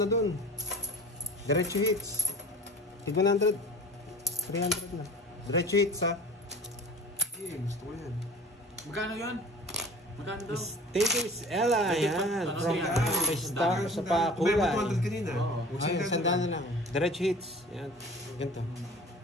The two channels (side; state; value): both; normal; correlation 0.41